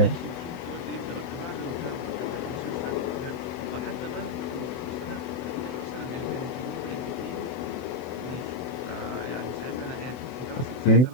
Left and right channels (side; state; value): right; late; 23 ms